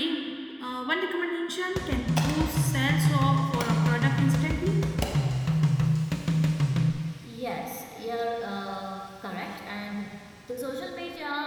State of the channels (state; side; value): identical; both; correlation 1.00